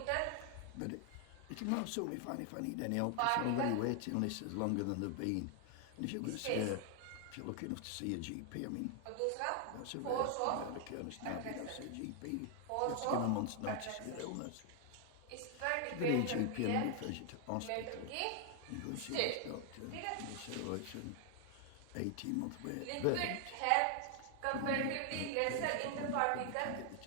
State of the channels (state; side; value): different; both; correlation 0.00